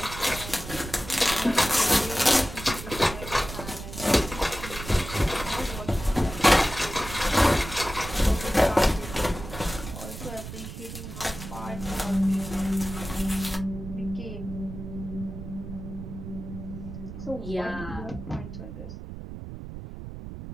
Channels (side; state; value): right; noise; rumble, 10 dB below the sound